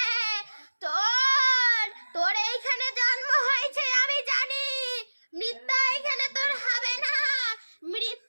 তোর এইখানে জন্ম হয়েছে আমি জানি, মৃত্যু এখানে তোর হবে না।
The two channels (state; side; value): inverted; both; correlation -1.00